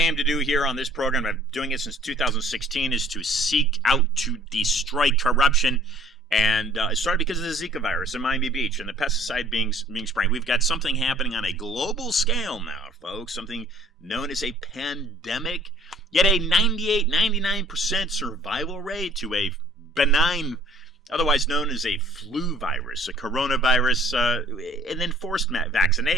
to do here on this program, I've been doing it since 2016, is to seek out to destroy corruption. And it started because of the Zika virus in Miami Beach and the pesticide being sprayed. We've got something happening on a global scale now, folks, something known as a pandemic, yet a 98, 99% survival rate to a benign, otherwise known as a flu virus, a coronavirus, and then forced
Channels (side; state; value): both; normal; correlation 0.54